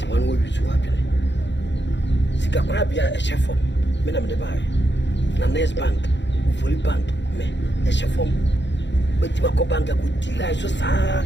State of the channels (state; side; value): late; right; 0.52 ms